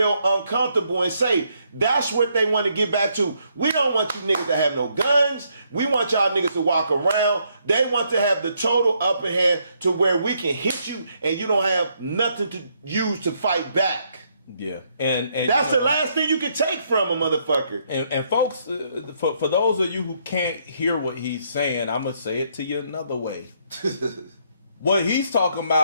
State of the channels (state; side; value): inverted; both; correlation -0.73